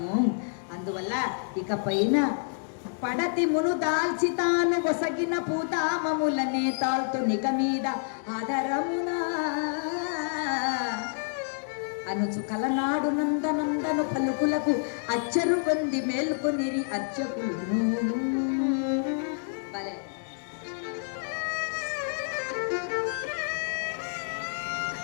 అందువల్ల ఇక పైన పడతి మును దాల్చి తాను ఒసగిన పూతామములనే తాల్తు నిక మీద ఆదరమునా అనుచు కలనాడు నందనందను పలుకులకు అచ్చరు పొంది మేల్కొనిరి అర్చకులు. భలే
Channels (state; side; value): silent; right; digital silence